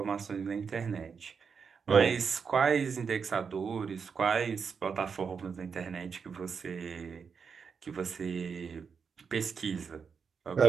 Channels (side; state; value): left; quieter; 6.0 dB